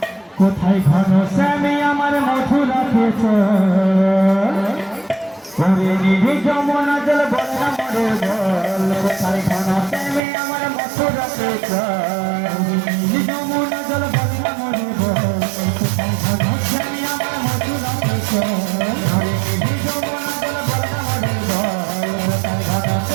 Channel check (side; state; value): left; drops out; at 10.2 s